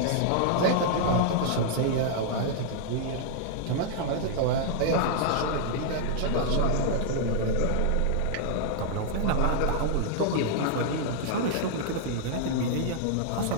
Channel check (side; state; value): both; different; correlation -0.01